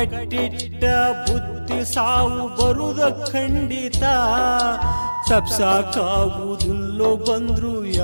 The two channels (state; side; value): inverted; both; correlation -1.00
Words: ಬುದ್ಧಿ ಸಾವು ಬರುದ ಖಂಡಿತ. ತಪ್ಸಾಕಾಗುವುದಿಲ್ಲೋ ಬಂದ್ರು